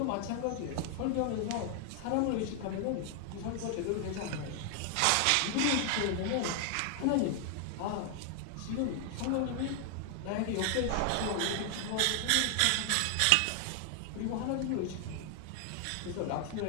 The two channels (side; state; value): both; different; correlation 0.00